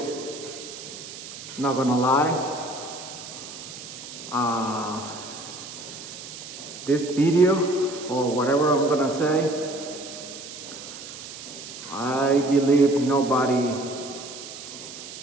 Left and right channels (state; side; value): noise; right; hiss, 12 dB below the sound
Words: Not gonna lie. Uh, this video, or whatever I'm gonna say, I believe nobody